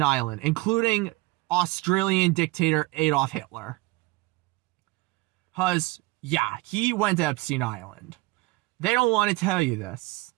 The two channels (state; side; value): quieter; left; 21.8 dB